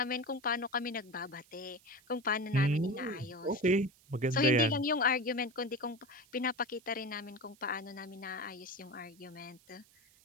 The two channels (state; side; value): noise; right; hiss, 28 dB below the sound